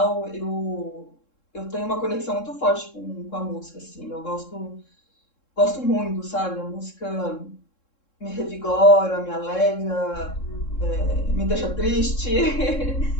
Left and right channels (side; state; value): right; late; 3.7 ms